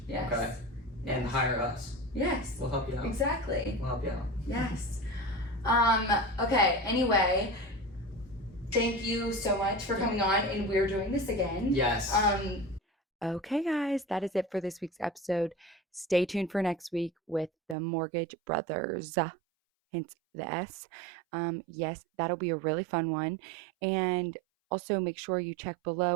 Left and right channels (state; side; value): drops out; left; at 17.8 s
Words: Yes. Okay. And hire us. Yes. We'll help you out. Exactly. We'll help you out. Yes. Okay, anyway, thank you so much for coming on, and we're doing this again. Yes. Okay, guys, that is it for this week's episode. Stay tuned for next week with the Mortgage Brothers. hence the S. Yes, that'll be a really fun one. And also make sure you check